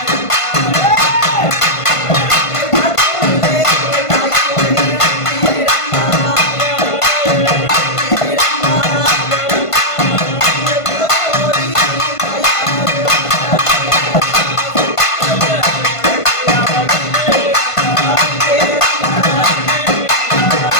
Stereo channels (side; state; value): right; late; 1.5 ms